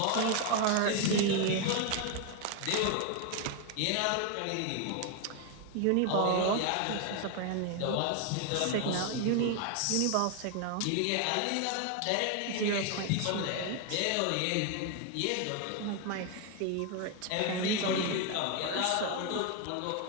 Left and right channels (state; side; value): different; both; correlation 0.01